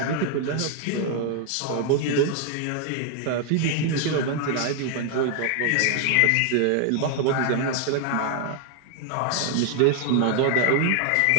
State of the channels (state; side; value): different; both; correlation 0.00